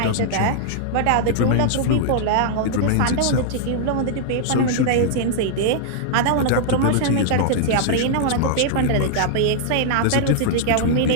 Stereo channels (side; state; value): both; different; correlation -0.01